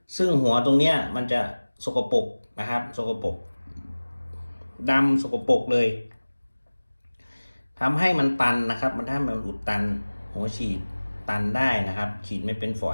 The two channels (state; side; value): inverted; both; correlation -1.00